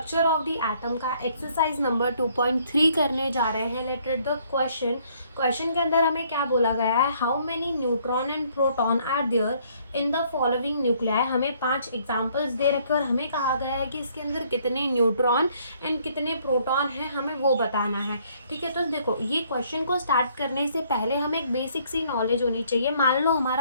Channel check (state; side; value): inverted; both; correlation -0.65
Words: of the atom का एक्सरसाइज नंबर 2.3 करने जा रहे हैं। लेट रीड द क्वेश्चन के अंदर हमें क्या बोला गया है, how many neutron and proton are there in the following nuclei. हमें 5 एग्जाम्पल्स दे रखे और हमें कहा गया है कि इसके अंदर कितने न्यूट्रॉन एंड कितने प्रोटॉन हैं, हमें वो बताना है। ठीक है, तो देखो ये क्वेश्चन को स्टार्ट करने से पहले हमें एक बेसिक सी नॉलेज होनी चाहिए। मान लो